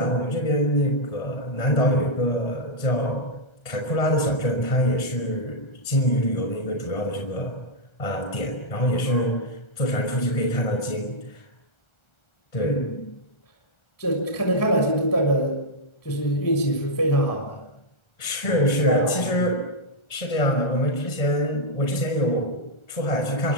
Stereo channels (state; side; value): late; right; 1.4 ms